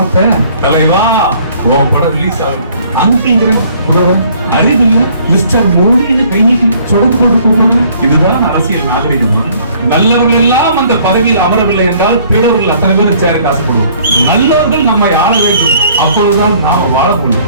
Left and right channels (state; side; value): inverted; both; correlation -0.59